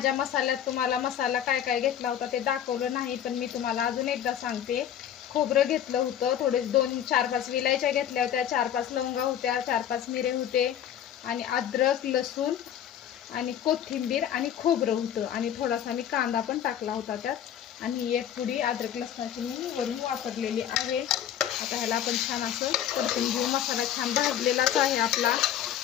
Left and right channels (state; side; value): quieter; right; 10.0 dB